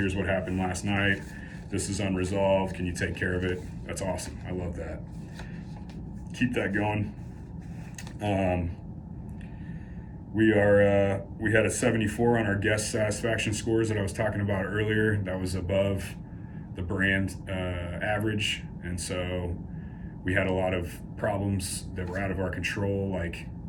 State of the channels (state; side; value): identical; both; correlation 1.00